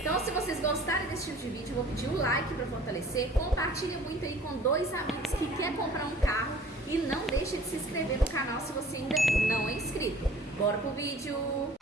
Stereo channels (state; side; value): normal; both; correlation 0.50